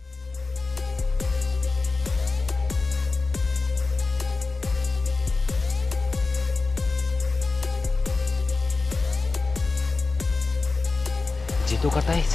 जी तो करता है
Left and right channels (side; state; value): right; quieter; 3.9 dB